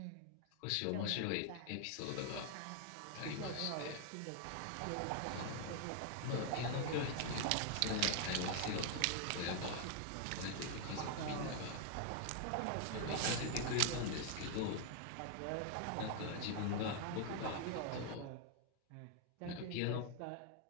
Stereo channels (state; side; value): different; both; correlation 0.00